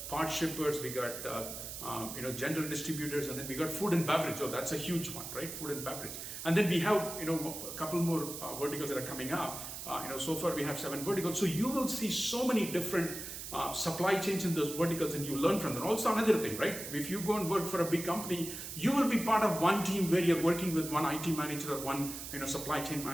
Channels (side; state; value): right; noise; hiss, 8 dB below the sound